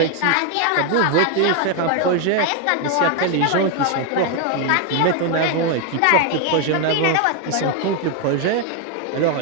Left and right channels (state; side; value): different; both; correlation 0.01